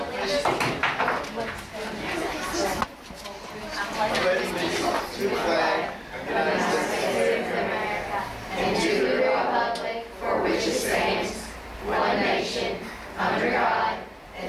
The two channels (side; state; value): both; identical; correlation 1.00